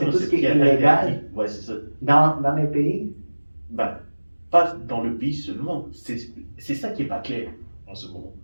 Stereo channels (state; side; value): inverted; both; correlation -1.00